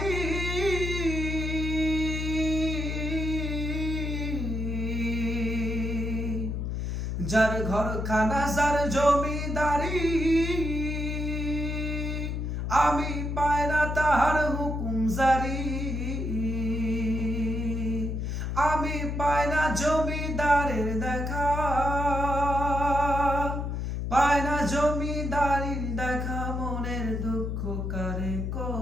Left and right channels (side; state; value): left; noise; hum, 2 dB below the sound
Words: যার ঘরখানা যার জমিদারি, আমি পাই না তাহার হুকুম জারি। আমি পাই না জমিদারের দেখা, পায় না জমিদারির দেখা, মনের দুঃখ কারে